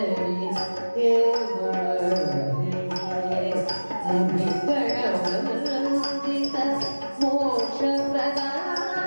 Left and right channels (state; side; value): inverted; both; correlation -1.00